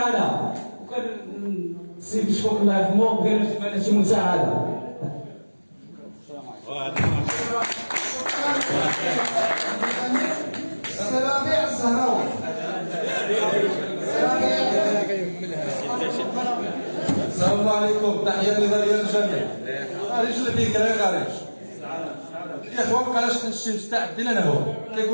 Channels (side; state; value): both; inverted; correlation -1.00